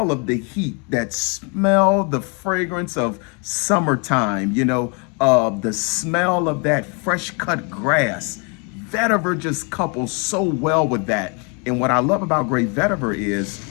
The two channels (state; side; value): quieter; right; 34.2 dB